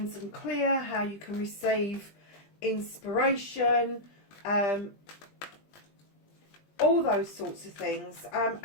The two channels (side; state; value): right; late; 20 ms